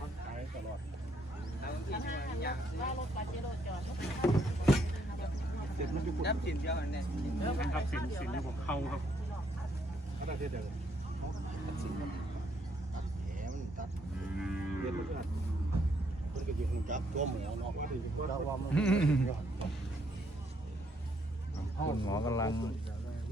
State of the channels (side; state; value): both; normal; correlation 0.71